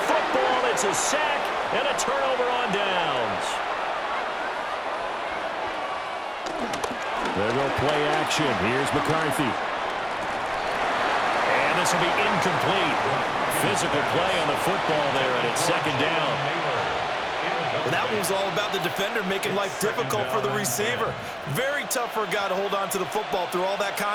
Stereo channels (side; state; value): both; identical; correlation 1.00